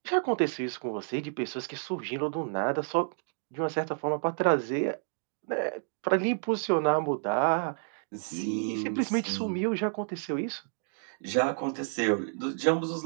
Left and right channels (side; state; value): left; silent; digital silence